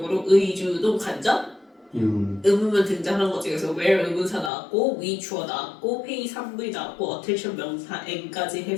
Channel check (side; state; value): right; drops out; at 4.5 s